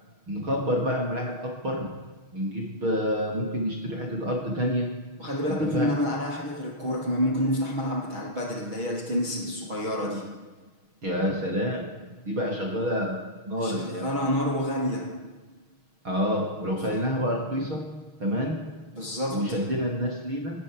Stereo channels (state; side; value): late; left; 6.4 ms